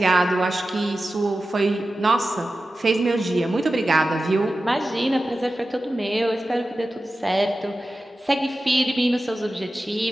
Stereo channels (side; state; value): both; normal; correlation 0.94